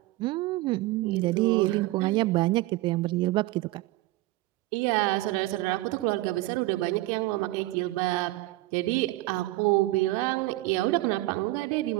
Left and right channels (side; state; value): left; quieter; 18.9 dB